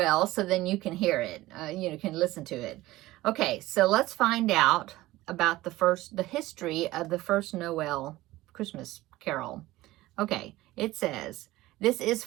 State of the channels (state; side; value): quieter; left; 17.6 dB